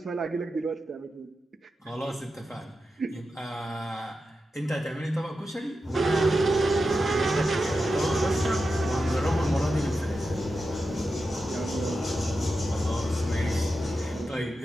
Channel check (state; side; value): normal; both; correlation 0.90